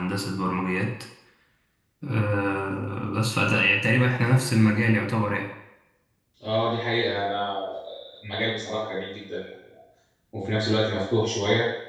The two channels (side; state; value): both; identical; correlation 1.00